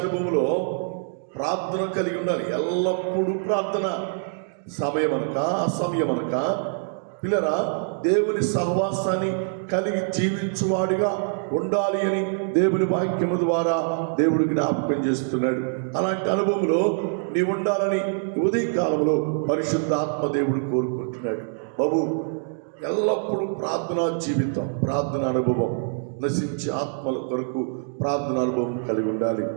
అనుభవంలో ప్రార్థన కలిగి ఉండాలి. ఎల్లప్పుడూ ప్రార్థన, సమయమనక అసమయమనక. పిల్లరా, దేవుని సహవాసాన్ని కలిగి జీవించువాడిగా ఉండాలి అని దేవుని వాక్యము ద్వారా దేవుడు జ్ఞాపకం చేస్తున్నాడు. అలాంటి అనుభవంలో నీ ఉండాలని ఉదయ కాలంలో పరిశుద్ధాత్మ దేవుడు కోరుకుంటున్నాడు. బాబు, ఎల్లప్పుడూ ప్రార్థనా జీవితం, ప్రార్థన అనుభవం, నశించే ఆత్మల కొరకు ప్రార్థన అనుభవం కలిగి ఉండాలి.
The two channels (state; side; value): silent; left; digital silence